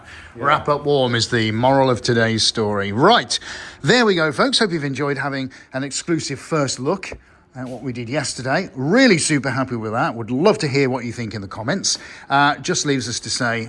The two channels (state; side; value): identical; both; correlation 1.00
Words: Wrap up warm is the moral of today's story. Right, there we go, folks. Hope you've enjoyed having an exclusive first look at what we did yesterday. Really super happy with that. Would love to hear what you think in the comments. Just leaves us to say,